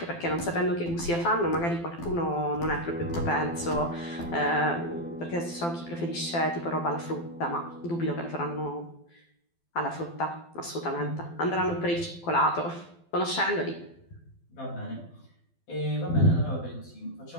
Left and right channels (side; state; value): right; late; 12 ms